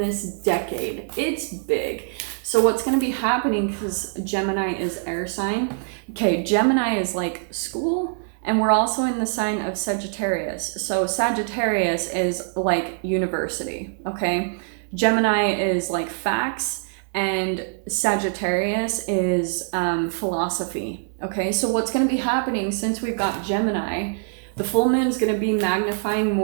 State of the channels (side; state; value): left; silent; digital silence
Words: decade. It's big. So what's going to be happening, because Gemini is air sign. Okay, Gemini is like school. And we're also in the sign of Sagittarius. So Sagittarius is like university, okay? Gemini is like facts, and Sagittarius is philosophy, okay? So what's going to be happening since we've got Gemini, the full moon's going to be magnifying